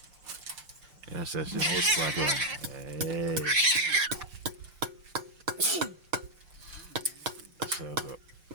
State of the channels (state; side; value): late; left; 6.6 ms